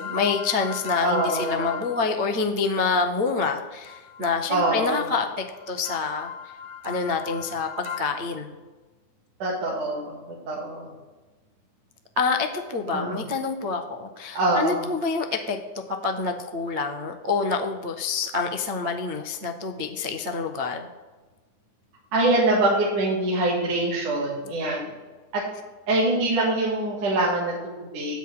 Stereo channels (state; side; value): late; left; 8.9 ms